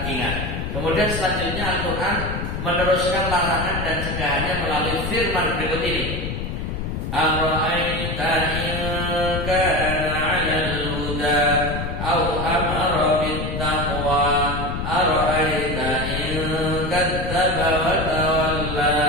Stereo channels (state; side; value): noise; left; rumble, 4 dB below the sound